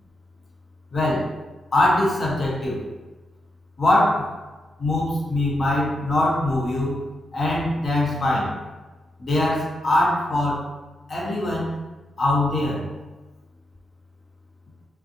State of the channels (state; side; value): normal; both; correlation 0.83